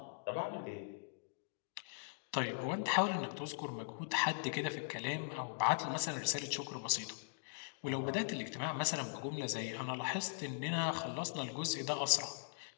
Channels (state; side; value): silent; right; digital silence